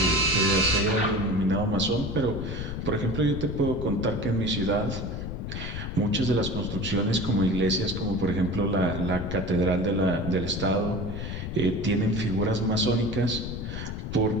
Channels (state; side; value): noise; left; rumble, 6 dB below the sound